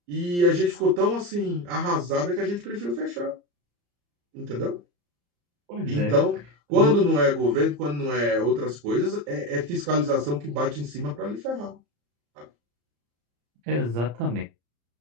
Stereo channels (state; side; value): late; left; 34 ms